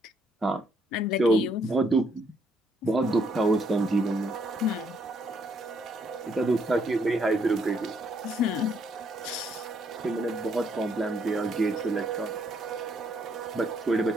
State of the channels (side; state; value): both; normal; correlation 0.71